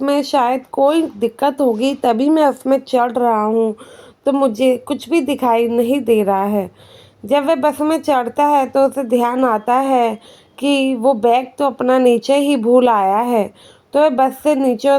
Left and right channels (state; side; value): identical; both; correlation 1.00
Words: में शायद कोई दिक्कत होगी, तभी मैं उसमें चढ़ रहा हूँ, तो मुझे कुछ भी दिखाई नहीं दे रहा है। जब वह बस में चढ़ता है तो उसे ध्यान आता है कि वो बैग तो अपना नीचे ही भूल आया है। तो वह बस से नीचे